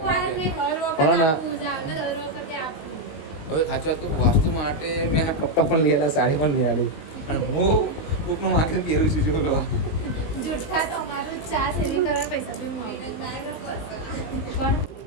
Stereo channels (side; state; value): right; late; 19 ms